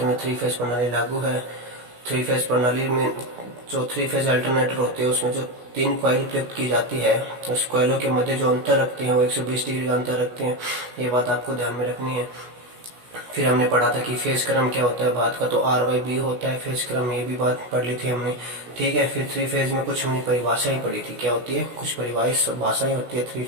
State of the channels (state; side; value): late; left; 16 ms